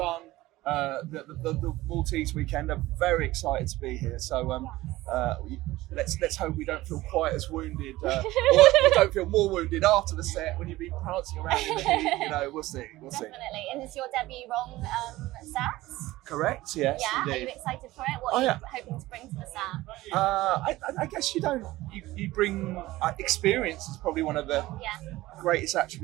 the Maltese weekend. I'm very excited to be here. So let's hope we don't feel quite as wounded, or don't feel more wounded after the set when you've been prancing around in the heat. You know, we'll see. Definitely. And it's your debut Rong set? Correct. Yes, yeah. indeed. Are you excited for it? What are you hoping to bring to the set? I guess you bring experience is probably one of the greatest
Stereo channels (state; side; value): quieter; left; 17.7 dB